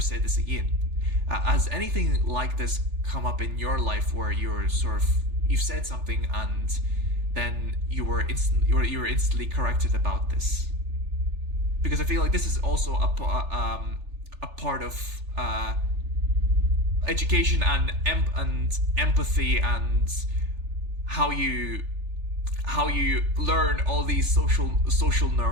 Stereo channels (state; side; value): late; left; 3.4 ms